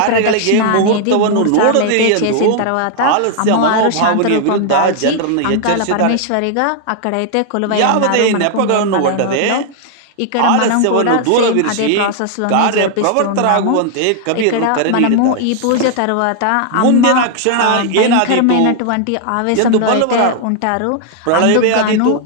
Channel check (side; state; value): both; different; correlation 0.00